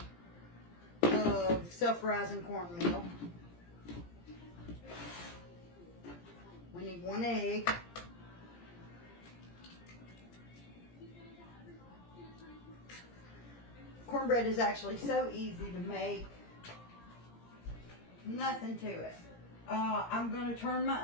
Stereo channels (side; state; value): right; late; 17 ms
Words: of self-rising cornmeal. We need 1 egg. Cornbread is actually so easy to make. Nothing to it. I'm going to turn